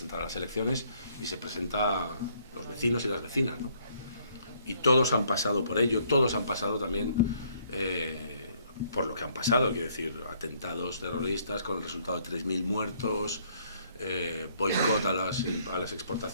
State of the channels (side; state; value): both; inverted; correlation -0.66